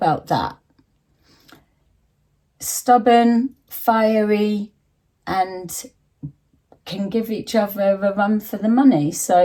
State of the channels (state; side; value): identical; both; correlation 1.00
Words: that? Stubborn, fiery, and can give each other a run for the money.